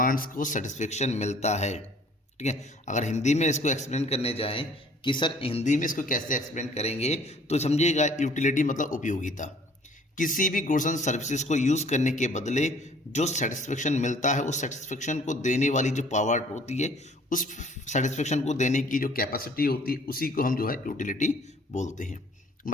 को सेटिस्फेक्शन मिलता है। ठीक है, अगर हिंदी में इसको एक्सप्लेन करने जाएं कि सर हिंदी में इसको कैसे एक्सप्लेन करेंगे, तो समझिएगा यूटिलिटी मतलब उपयोगिता। किसी भी गुड्स एंड सर्विसेज को यूज करने के बदले जो सेटिस्फेक्शन मिलता है, उस सेटिस्फेक्शन को देने वाली जो पावर होती है, उस सेटिस्फेक्शन को देने की जो कैपेसिटी होती है, उसी को हम जो है यूटिलिटी बोलते हैं।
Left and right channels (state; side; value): normal; both; correlation 0.55